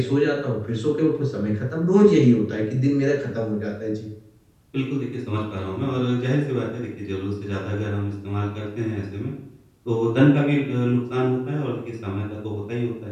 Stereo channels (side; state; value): both; identical; correlation 1.00